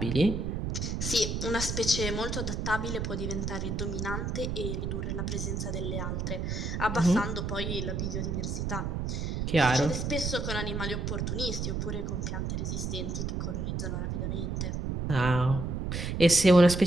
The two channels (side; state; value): right; noise; rumble, 2 dB below the sound